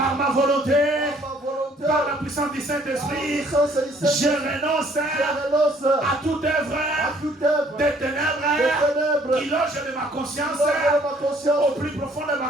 ma volonté, par la puissance du Saint-Esprit, je renonce à toute œuvre des ténèbres qui loge de ma conscience, au plus profond de ma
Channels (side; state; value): both; normal; correlation 0.61